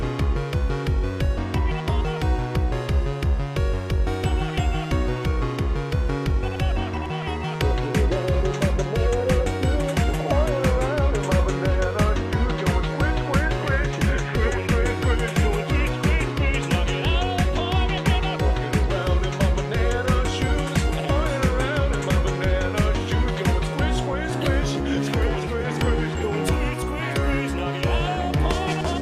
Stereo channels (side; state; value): both; identical; correlation 1.00